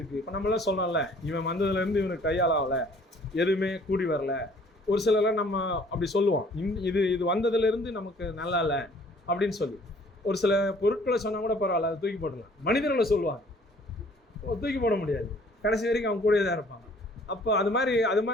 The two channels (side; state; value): both; normal; correlation 0.56